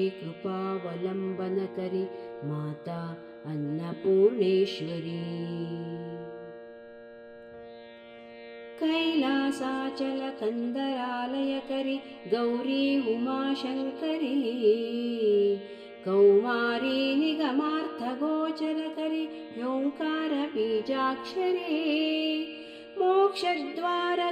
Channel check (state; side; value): identical; both; correlation 1.00